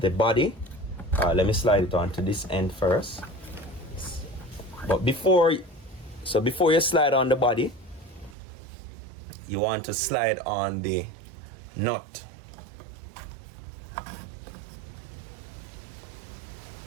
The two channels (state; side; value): drops out; left; at 8.3 s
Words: body. Let me slide it onto this end first. But before you slide on the body, you want to slide on the nut.